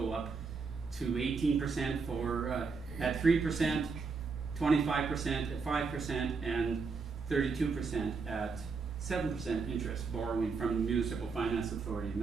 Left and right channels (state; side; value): quieter; left; 4.8 dB